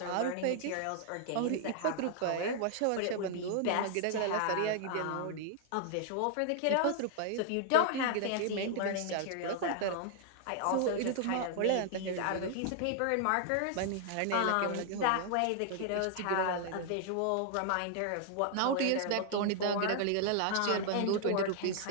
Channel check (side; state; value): both; different; correlation 0.00